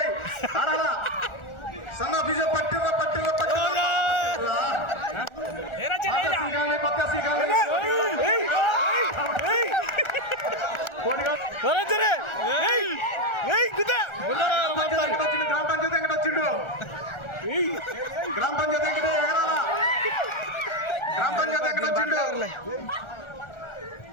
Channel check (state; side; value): late; right; 1.4 ms